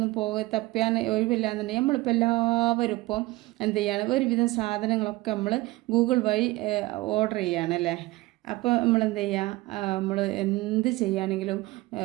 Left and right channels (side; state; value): left; quieter; 20.1 dB